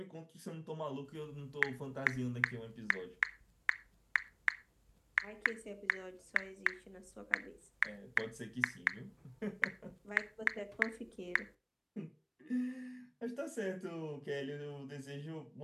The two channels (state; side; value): identical; both; correlation 1.00